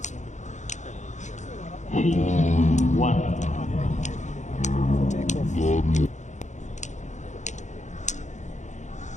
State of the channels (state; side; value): late; right; 0.35 ms